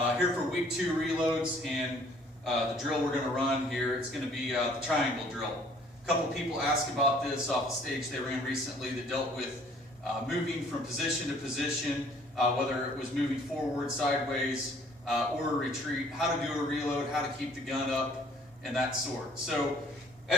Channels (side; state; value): both; normal; correlation 0.58